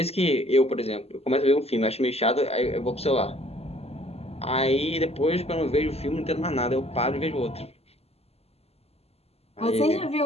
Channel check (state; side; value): late; right; 0.29 ms